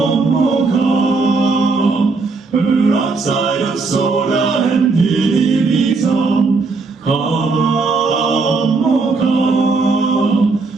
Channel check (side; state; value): left; quieter; 4.0 dB